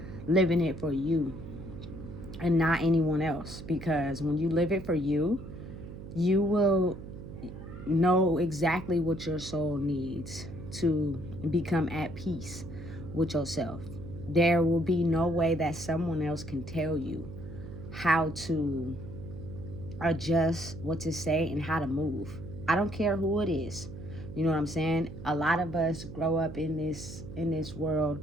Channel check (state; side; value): noise; right; hum, 12 dB below the sound